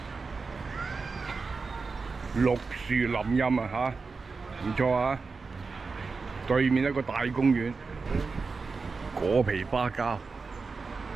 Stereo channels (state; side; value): quieter; left; 4.5 dB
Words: 綠樹林蔭啊嚇，唔錯啊！對面一個大公園，果皮花膠。